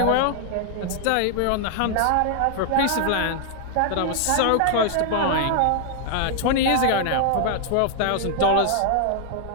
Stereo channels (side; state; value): both; different; correlation 0.00